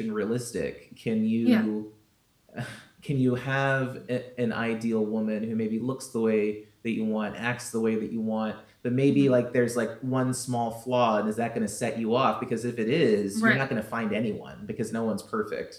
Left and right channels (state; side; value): identical; both; correlation 1.00